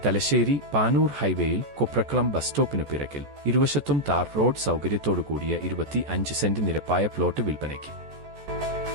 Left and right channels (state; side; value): late; left; 14 ms